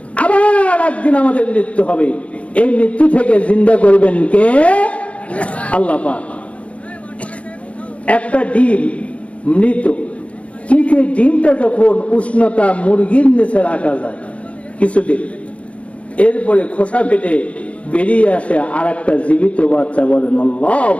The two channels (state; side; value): late; right; 0.063 ms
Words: আবার একদিন আমাদের মৃত্যু হবে। এই মৃত্যু থেকে জিন্দা করবেন কে? আল্লাহ পাক। একটা ডিম মৃত, কিন্তু ডিমটা যখন উষ্ণতা মুরগির নিচে রাখা যায় কিছুদিন, এরপরে খোসা ফেটে বেরিয়ে আসে আর একটা জীবিত বাচ্চা। বলেন